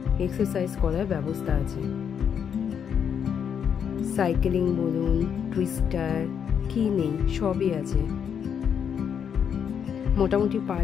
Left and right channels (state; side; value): quieter; right; 7.8 dB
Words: এক্সারসাইজ করার ব্যবস্থা আছে। সাইকেলিং বলুন, টুইস্টার, কি নেই সবই আছে। মোটামুটি